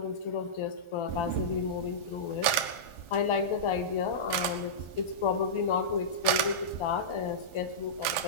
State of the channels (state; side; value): late; right; 1.4 ms